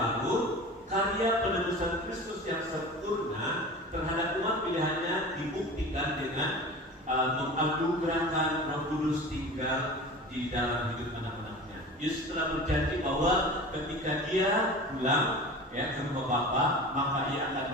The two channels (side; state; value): both; normal; correlation 0.36